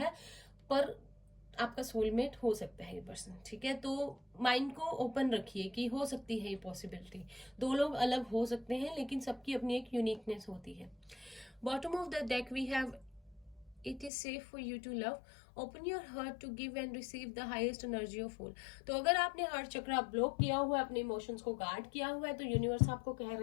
पर आपका सोलमेट हो सकता है ये पर्सन। ठीक है, तो माइंड को ओपन रखिए कि हो सकती है ये पॉसिबिलिटी। दो लोग अलग हो सकते हैं, लेकिन सबकी अपनी एक यूनिकनेस होती है। Bottom of the deck we have it is safe for you to love, open your heart to give and receive the highest energy of all। तो अगर आपने हार्ट चक्र ब्लॉक किया हुआ है, अपने इमोशंस को गार्ड किया हुआ है, तो यूनिवर्स आपको कह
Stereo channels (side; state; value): right; drops out; at 14.1 s